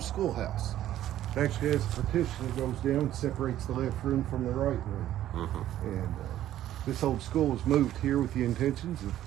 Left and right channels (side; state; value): left; quieter; 12.7 dB